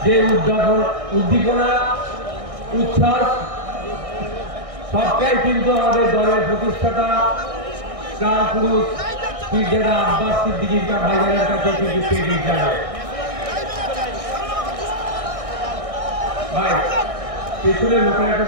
যে উদ্দীপনা উচ্ছ্বাস সবটাই কিন্তু আমাদের দলের প্রতিষ্ঠাতা প্রাণ পুরুষ পীরজাদা আব্বাস সিদ্দিকী ভাইজানের কাছে কিন্তু পেয়ে যাবে। ভাই পেছনের লোকেরা একটা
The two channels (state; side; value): late; left; 1.6 ms